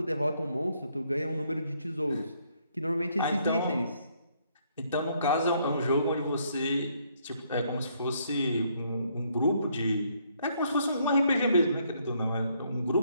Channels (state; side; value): inverted; both; correlation -0.70